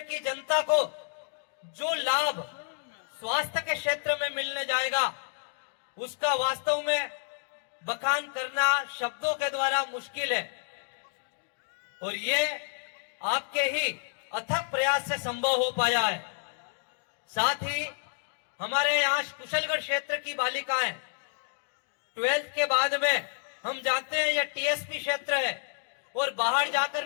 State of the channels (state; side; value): silent; right; digital silence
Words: की जनता को जो लाभ स्वास्थ्य के क्षेत्र में मिलने जाएगा, उसका वास्तव में बखान करना शब्दों के द्वारा मुश्किल है। और ये आपके ही अथक प्रयास से संभव हो पाया है। साथ ही हमारे यहाँ कुशलगढ़ क्षेत्र की बालिकाएं 12th के बाद में, हम जानते हैं यह टीएसपी क्षेत्र है और बाहर जाकर